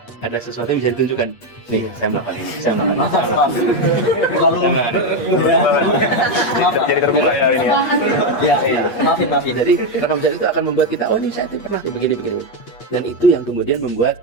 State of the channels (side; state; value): right; late; 8.4 ms